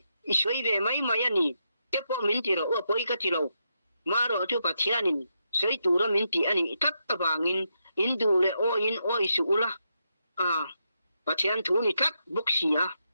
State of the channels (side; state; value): both; inverted; correlation -0.82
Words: isoi ve mai mai ani te po min ti ro apoi ka ti lo ma ro chu pathianin sei tu ro min ti ani tat awangin indu le o in o isu ula pathian thu ni tat boksia